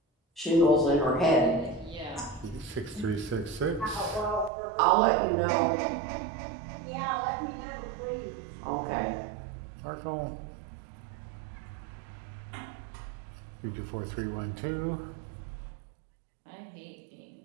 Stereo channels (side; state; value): left; drops out; at 4.5 s